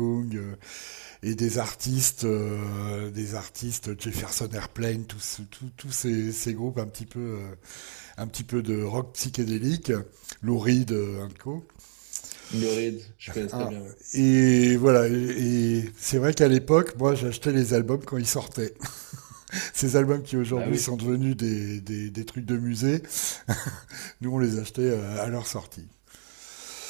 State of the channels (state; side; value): silent; left; digital silence